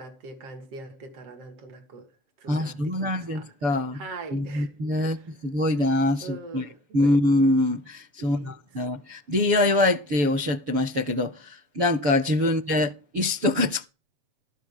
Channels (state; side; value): late; left; 7.0 ms